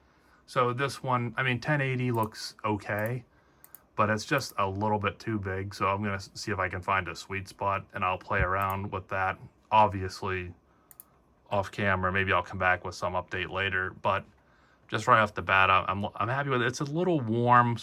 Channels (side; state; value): both; identical; correlation 1.00